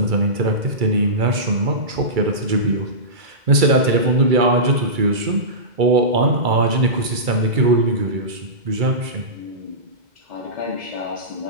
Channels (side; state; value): left; late; 2.3 ms